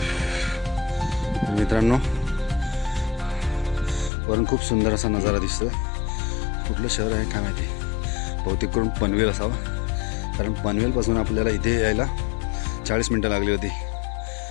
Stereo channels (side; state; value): right; drops out; at 4.1 s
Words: मित्रांनो वरून खूप सुंदर असा नजारा दिसतो. कुठलं शहर आहे काय माहिती, बहुतेक करून पनवेल असावं, कारण पनवेलपासून आपल्याला इथे यायला 40 मिनटं लागली होती.